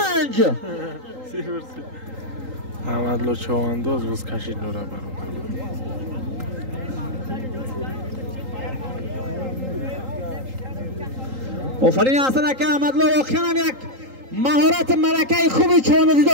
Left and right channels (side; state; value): left; late; 3.8 ms